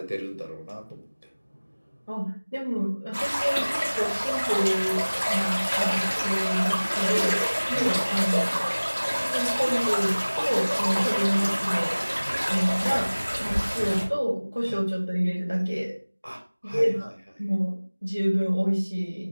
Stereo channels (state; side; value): inverted; both; correlation -1.00